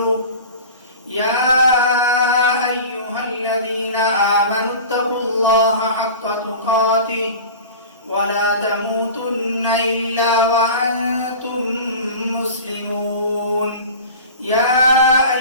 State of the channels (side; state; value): both; inverted; correlation -0.36